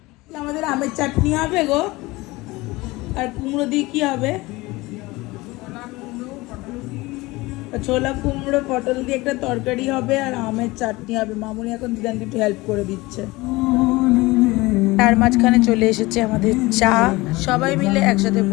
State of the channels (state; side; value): quieter; right; 21.3 dB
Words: নিই। আমাদের আমের চাটনি হবে গো, আর কুমড়ো দিয়ে কি হবে? ছোলা কুমড়ো পটল দিয়ে একটা তরকারি হবে, আর আমের চাটনি হবে। মামুনি এখন দিদানকে একটু হেল্প করে দিচ্ছে। তার মাঝখানে চলে এসেছে আমাদের চা, সবাই মিলে একসাথে